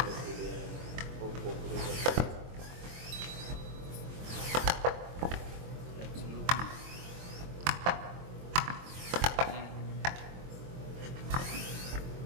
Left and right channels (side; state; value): left; late; 23 ms